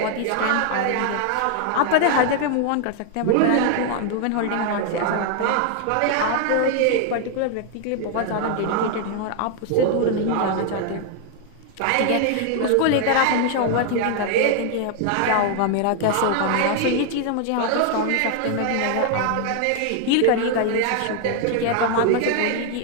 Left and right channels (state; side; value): different; both; correlation 0.00